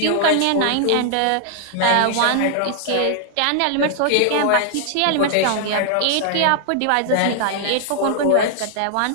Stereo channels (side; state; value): both; different; correlation 0.00